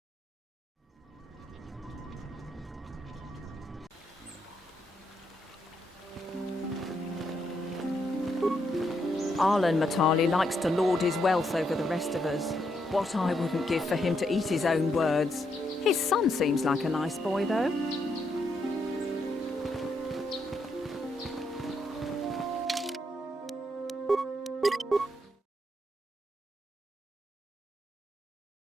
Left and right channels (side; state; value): both; normal; correlation 0.78